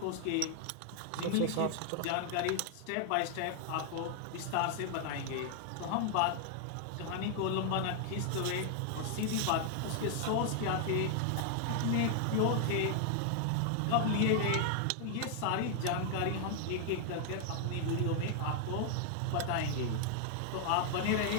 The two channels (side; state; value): both; different; correlation 0.00